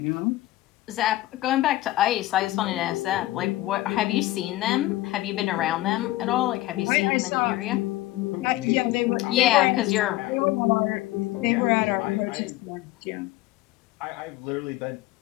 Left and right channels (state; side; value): quieter; right; 16.6 dB